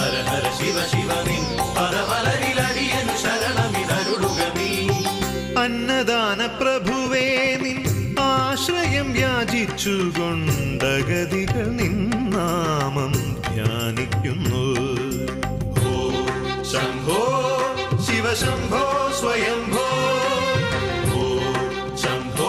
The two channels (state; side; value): identical; both; correlation 1.00